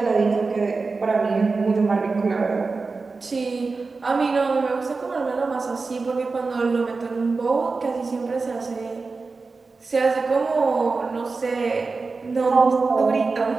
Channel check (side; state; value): left; quieter; 4.1 dB